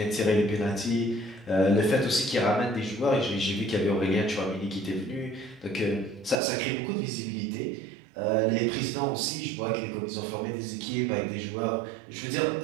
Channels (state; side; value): drops out; left; at 6.4 s